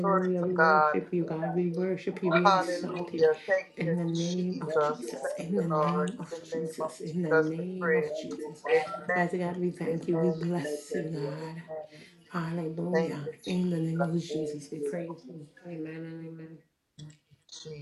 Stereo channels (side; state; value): both; identical; correlation 1.00